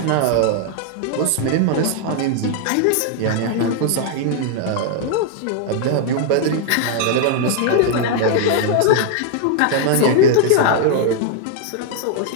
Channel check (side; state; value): both; different; correlation 0.00